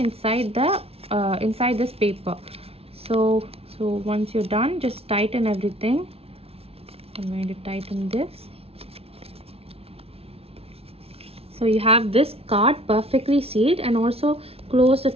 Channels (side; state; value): left; late; 0.29 ms